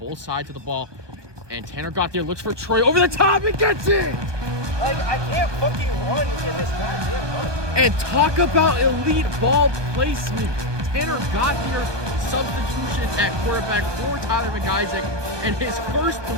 sides of the ball. And Tanner got there, looks for Troy over the top and gets it! Like, I can't fucking run in this goddamn run. And talk about elite ball placement. Tanner got there, substitution at quarterback for Tyler McIsaac, and his first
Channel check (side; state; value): left; late; 1.2 ms